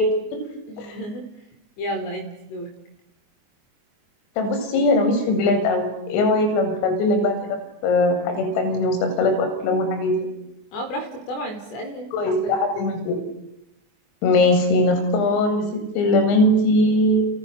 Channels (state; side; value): late; right; 24 ms